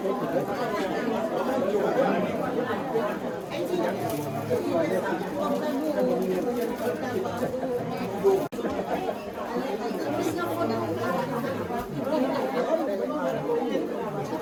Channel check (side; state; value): both; identical; correlation 1.00